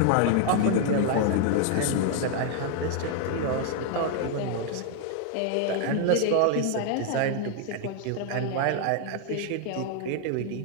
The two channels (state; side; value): different; both; correlation 0.00